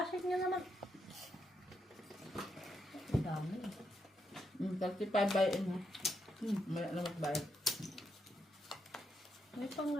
niya naman. Ang dami. 35 buy-in ha. May alam magbayad. May pang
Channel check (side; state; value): both; normal; correlation 0.80